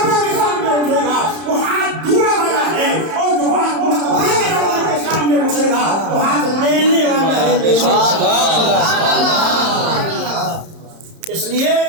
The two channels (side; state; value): left; late; 31 ms